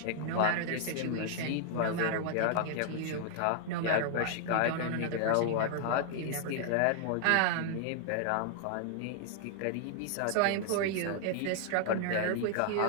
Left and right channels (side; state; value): both; different; correlation 0.00